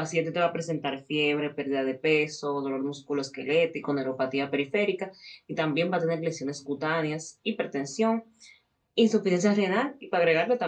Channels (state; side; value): identical; both; correlation 1.00